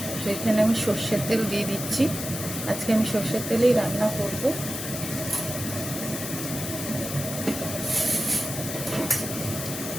তো এখানে আমি সর্ষের তেল দিয়ে দিচ্ছি। আজকে আমি সর্ষের তেলেই রান্না করব।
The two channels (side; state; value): left; noise; hiss, 6 dB below the sound